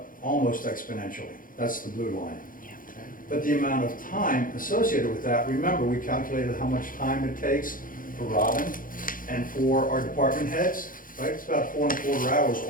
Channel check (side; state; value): right; late; 0.40 ms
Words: almost exponentially. That's the blue line. But the amount of time associated with that, remember, we calculated how much time it takes for Robin and for our department heads, right? It's about 4¼ hours